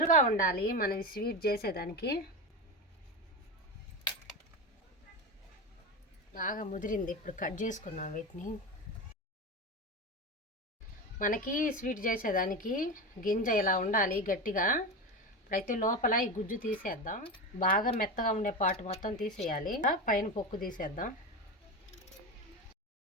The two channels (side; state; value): both; normal; correlation 0.20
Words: ఉండాలి మనం స్వీట్ చేసేదానికి. బాగా ముదిరింది, ఇప్పుడు కట్ చేసుకుందాం వీటిని. మనకి స్వీట్ చేసేదానికి గింజ ఇలా ఉండాలి గట్టిగా. ఇప్పుడైతే లోపల ఈ గుజ్జు తీసేద్దాం. బాగా మెత్తగా ఉండే పాటు మొత్తం తీసేయాలి, పైన పొక్కు తీసేద్దాం.